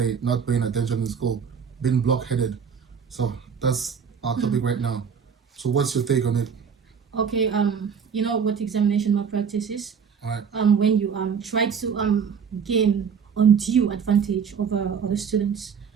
not paying attention in school, being blockheaded. So that's our topic right now. So what's your take on it? Okay, you know what examination malpractice is? All right. When you try to gain undue advantage over other students,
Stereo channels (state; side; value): quieter; left; 6.7 dB